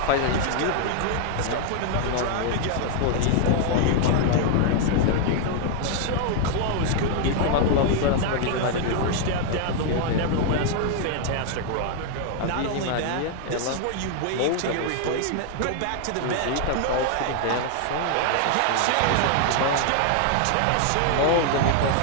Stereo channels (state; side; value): different; both; correlation 0.00